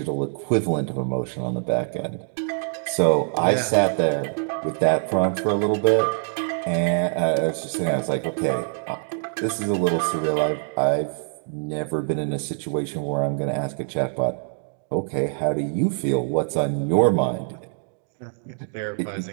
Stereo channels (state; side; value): silent; left; digital silence